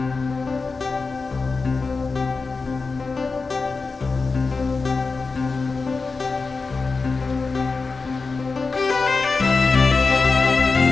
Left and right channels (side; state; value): right; quieter; 4.2 dB